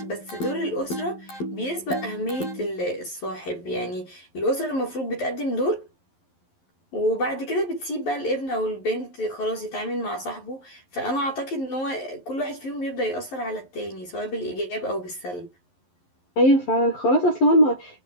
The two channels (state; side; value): late; right; 11 ms